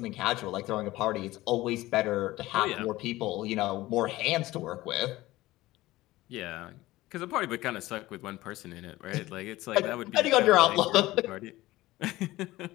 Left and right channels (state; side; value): quieter; right; 17.8 dB